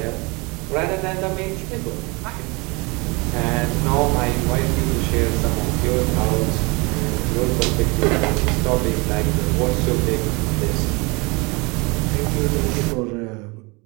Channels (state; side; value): quieter; left; 27.2 dB